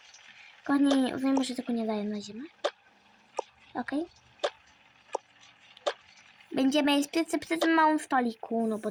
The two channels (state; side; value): identical; both; correlation 1.00